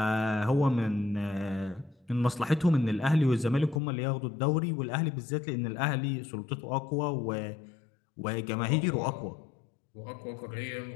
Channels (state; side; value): drops out; right; at 3.8 s